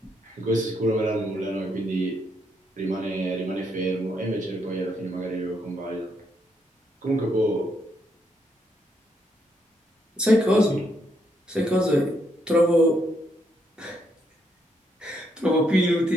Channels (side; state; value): both; normal; correlation 0.76